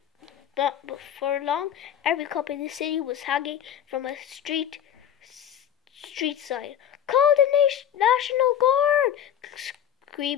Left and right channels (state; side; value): quieter; right; 9.8 dB